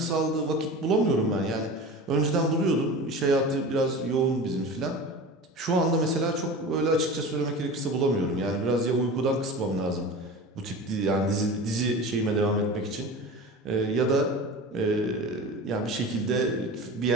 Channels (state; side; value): normal; both; correlation 0.33